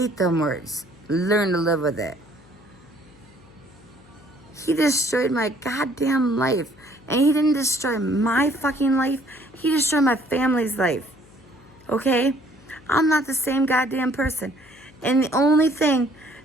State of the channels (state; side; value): noise; left; hum, 26 dB below the sound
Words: them words. Learn to live with it. He destroyed my goddamn life. And he didn't destroy my fucking life. He destroyed my family's life. Okay? I'm not the same goddamn person. And the only thing